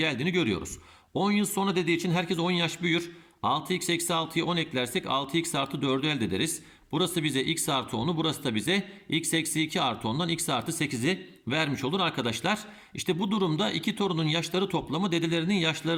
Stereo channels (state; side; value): identical; both; correlation 1.00